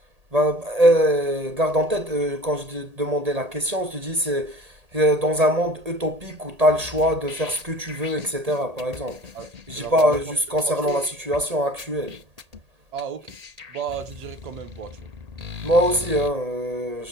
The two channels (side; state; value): left; late; 1.8 ms